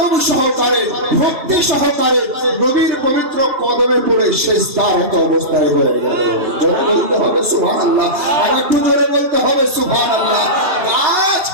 সহকারে, ভক্তি সহকারে নবীর পবিত্র কদমে পড়ে সিজদারত অবস্থায় হয়ে গেল। জোরে বলতে হবে সুবহানাল্লাহ, আর একটু জোরে বলতে হবে সুবহানাল্লাহ। গাছ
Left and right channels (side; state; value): left; late; 2.8 ms